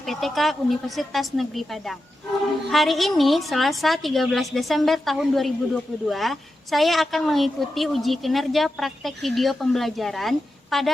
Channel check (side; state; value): both; normal; correlation 0.90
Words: Universitas Negeri Padang. Hari ini Selasa 13 Desember tahun 2022, saya akan mengikuti uji kinerja praktek video pembelajaran